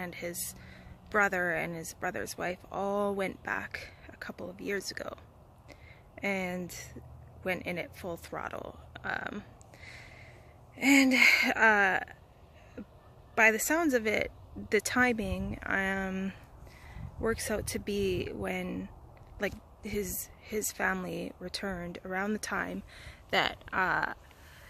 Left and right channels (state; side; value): identical; both; correlation 1.00